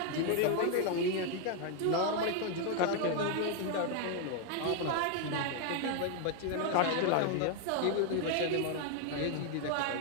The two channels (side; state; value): both; different; correlation 0.01